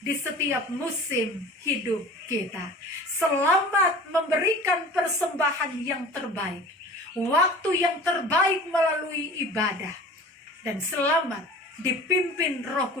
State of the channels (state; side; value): normal; both; correlation 0.41